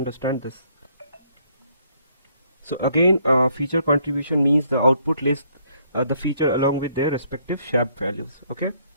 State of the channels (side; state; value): both; inverted; correlation -0.68